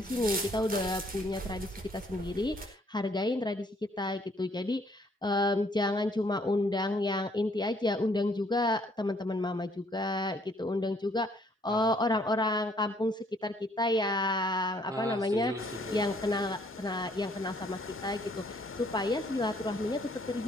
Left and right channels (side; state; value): both; normal; correlation 0.65